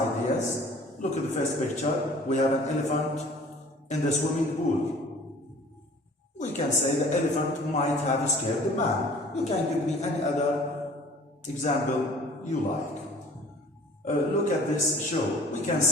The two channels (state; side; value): normal; both; correlation 0.49